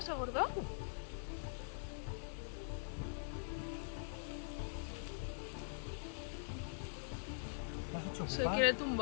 gorda? Se quiere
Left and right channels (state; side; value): silent; right; digital silence